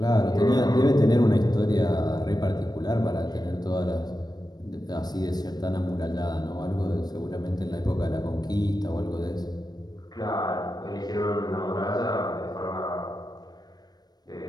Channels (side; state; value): right; late; 0.19 ms